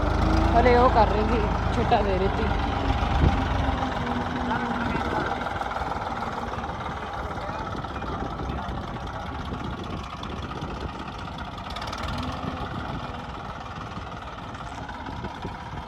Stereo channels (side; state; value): both; identical; correlation 1.00